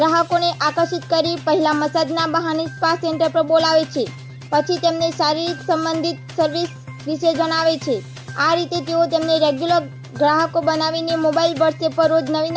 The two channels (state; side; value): identical; both; correlation 1.00